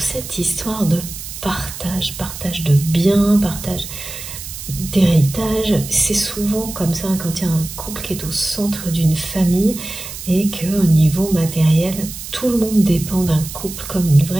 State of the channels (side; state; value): right; noise; hiss, 10 dB below the sound